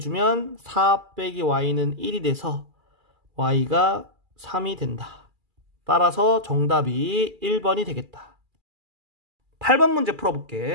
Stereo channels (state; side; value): late; left; 2.4 ms